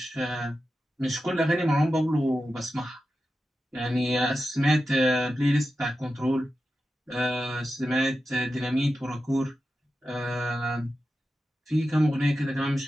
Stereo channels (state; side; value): normal; both; correlation 0.91